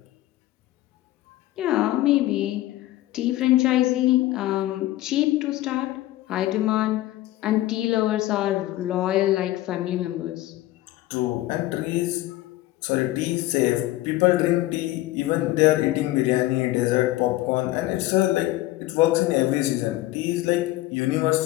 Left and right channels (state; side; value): quieter; right; 16.4 dB